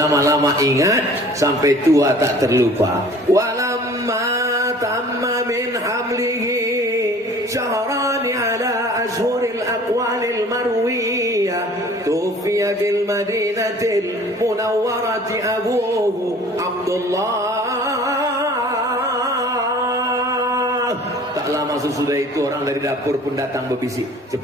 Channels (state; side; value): normal; both; correlation 0.49